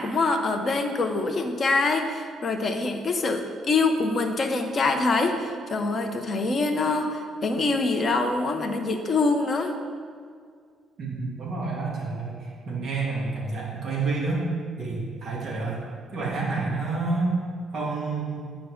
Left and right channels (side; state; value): both; normal; correlation 0.70